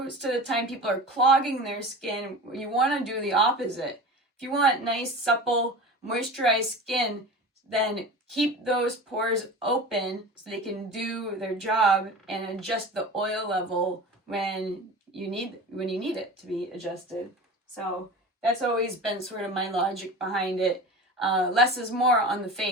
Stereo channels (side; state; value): both; normal; correlation 0.33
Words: of the time people are clogging their skin. You want to do the opposite. If you want nice, supple, moisturized skin, then keep those pores open so they can do their job and adjust the oil level when you need it to be adjusted. So that's always been sort of my logic behind it. Less is more on the